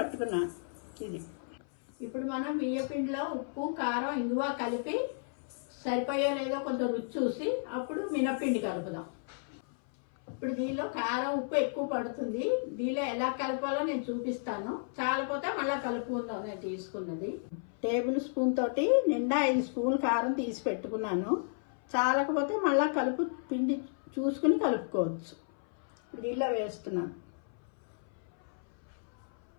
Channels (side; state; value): right; silent; 56 dB below the other